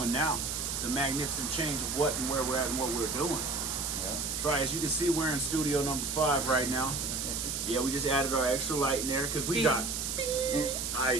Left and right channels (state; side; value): noise; right; hiss, 2 dB below the sound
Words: now. The magnificent change of what and where we're at and what we're doing. Yeah. That's right. As you can see, we're in studio number 5 right now. Yeah, we just added our extra light in there because we got